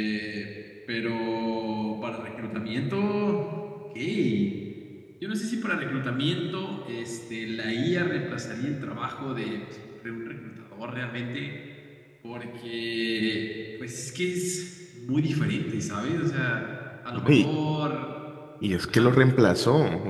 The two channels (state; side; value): identical; both; correlation 1.00